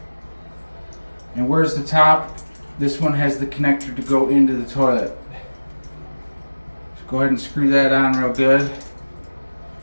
And where's the top? This one has the connector to go into the toilet. So go ahead and screw that on real good.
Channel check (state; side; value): inverted; both; correlation -1.00